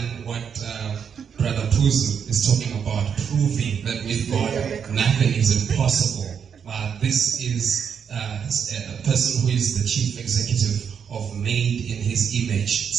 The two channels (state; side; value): quieter; left; 7.3 dB